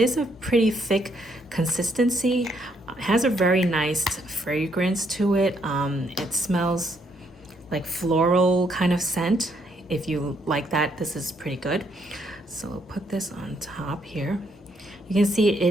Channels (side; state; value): both; normal; correlation 0.72